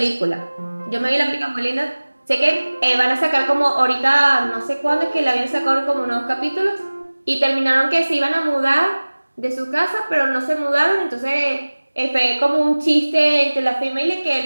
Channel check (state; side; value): inverted; both; correlation -1.00